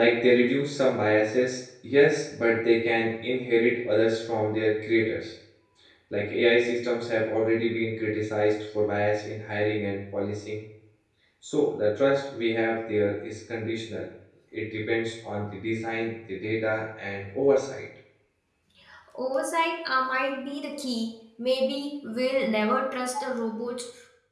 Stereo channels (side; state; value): both; identical; correlation 1.00